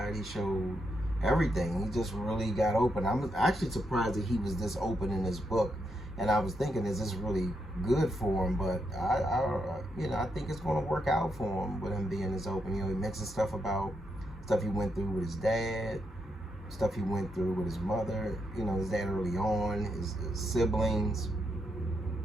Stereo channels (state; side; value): normal; both; correlation 0.81